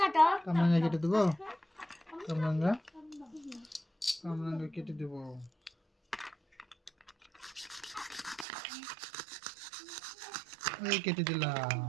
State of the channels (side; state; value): left; drops out; at 8.5 s